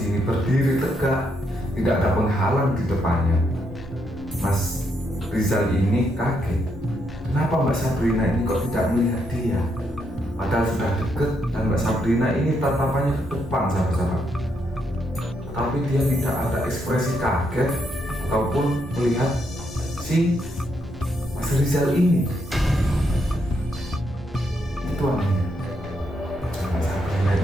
berdiri tegak, tidak ada penghalang di depannya. Mas Rizal ini kaget, kenapa Mbak Sabrina ini kok tidak melihat dia? Padahal sudah deket dan Mbak Sabrina ini tatapannya ke depan, sahabat-sahabat. Tapi dia tidak ada ekspresi kaget ataupun melihat si Mas Rizal ini. Itu anehnya. Mbak Sabrina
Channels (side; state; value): both; normal; correlation 0.78